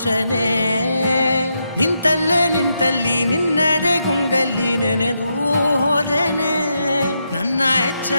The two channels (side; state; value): both; inverted; correlation -0.83